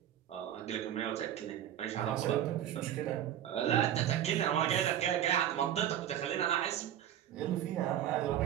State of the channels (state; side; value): quieter; left; 11.0 dB